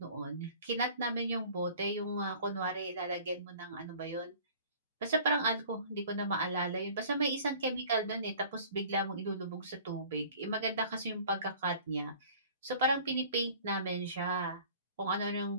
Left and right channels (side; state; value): both; inverted; correlation -0.48